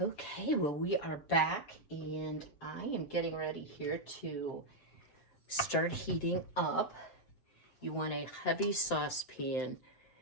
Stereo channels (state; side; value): late; right; 7.9 ms